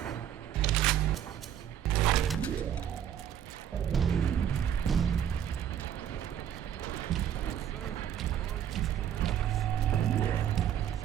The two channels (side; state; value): left; quieter; 9.9 dB